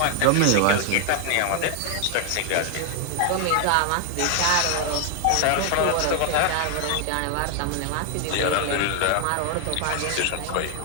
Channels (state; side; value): different; both; correlation 0.00